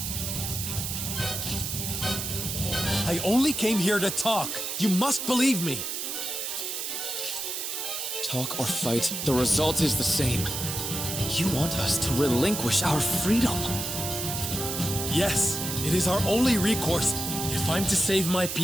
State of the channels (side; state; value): right; noise; hiss, 4 dB below the sound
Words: I only came here to talk. You must believe me. Talk or fight, the result is the same. You want us to relinquish our freedom. Yes, it is our only recourse if I'm to save my